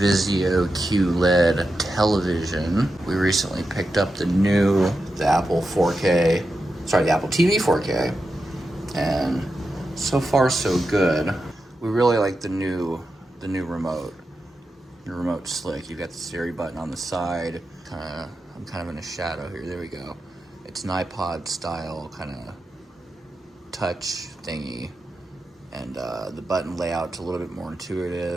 QLED television. We recently picked up the Apple TV 4K, and so far so good. We really like the new remote. The remote's slick. You've got the Siri button on the side. I'm kind of in a shadow here. There we go. It's an iPod style kind of touch thingy. And the button layout's a little bit more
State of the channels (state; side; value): normal; both; correlation 0.89